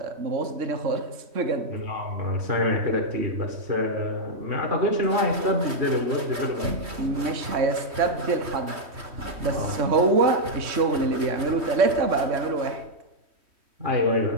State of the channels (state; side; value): late; left; 3.1 ms